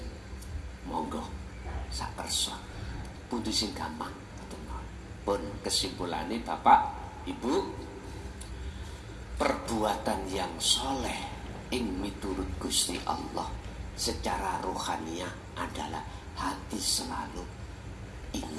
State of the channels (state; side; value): identical; both; correlation 1.00